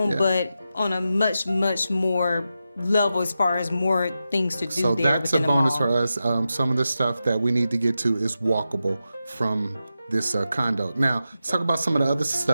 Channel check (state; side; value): inverted; both; correlation -0.90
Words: but on a much, much more level as far as more things to do. So there that's a bonus for us. Some of the stuff that we need to get to is walkable from this condo. Now, let's talk about some of the other